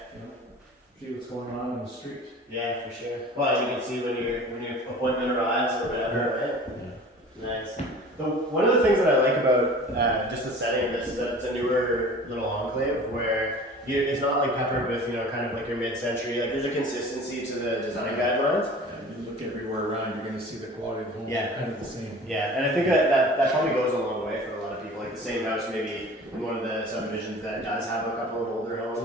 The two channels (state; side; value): normal; both; correlation 0.42